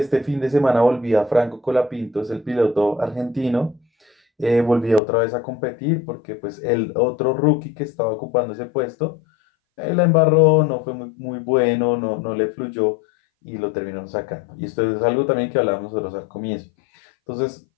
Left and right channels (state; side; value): drops out; right; at 5.0 s